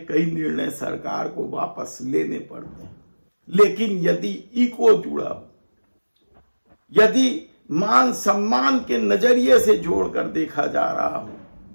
कई निर्णय सरकार को वापस लेने पड़ते हैं, लेकिन यदि इको जुड़ा हो, यदि मान सम्मान के नजरिए से जोड़कर देखा जा रहा हो,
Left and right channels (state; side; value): inverted; both; correlation -1.00